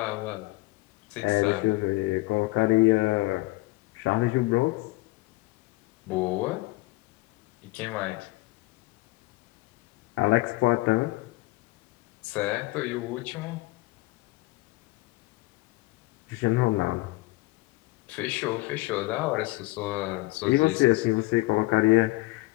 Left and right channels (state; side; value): quieter; right; 21.7 dB